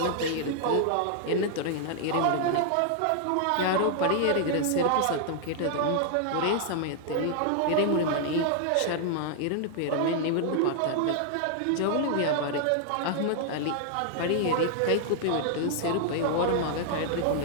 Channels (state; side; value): different; both; correlation -0.01